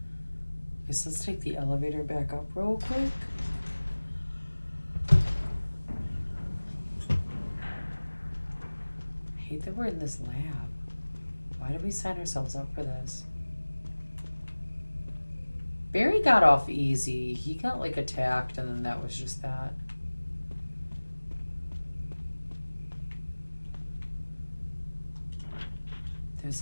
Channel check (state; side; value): inverted; both; correlation -1.00